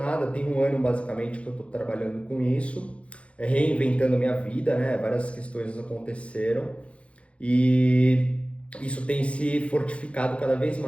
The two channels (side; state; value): right; late; 0.061 ms